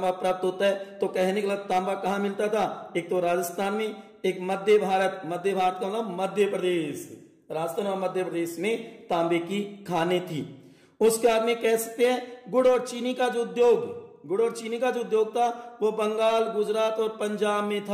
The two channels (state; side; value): identical; both; correlation 1.00